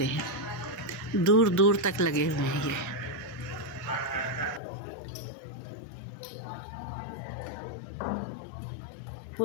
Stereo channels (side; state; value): right; drops out; at 4.6 s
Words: हैं। दूर दूर तक लगे हुए हैं ये।